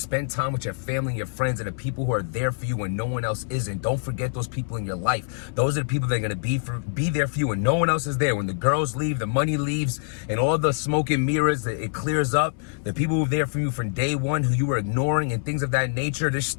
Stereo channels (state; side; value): silent; right; 62 dB below the other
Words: time with your family and your friends and the people who are there for you when no one else isn't. Don't forget those people in your life. Those are the people that are going to be there for you when no one else is there. When the girls leave, the money leaves, and all the smoke and mirrors, it clears up. The people who are there for you from day one who you were ignoring and things of that nature, they're